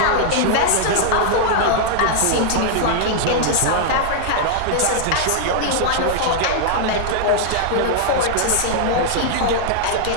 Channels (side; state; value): both; different; correlation -0.01